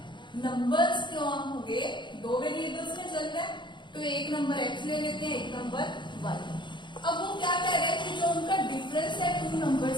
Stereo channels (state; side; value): late; right; 0.23 ms